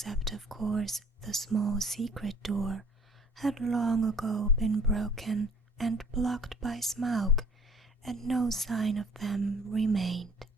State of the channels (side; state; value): both; normal; correlation 0.53